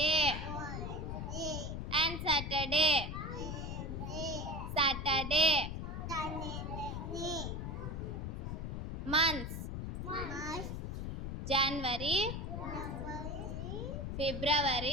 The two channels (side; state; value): left; noise; rumble, 4 dB below the sound